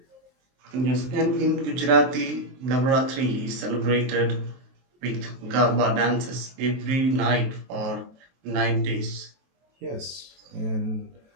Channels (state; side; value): late; left; 23 ms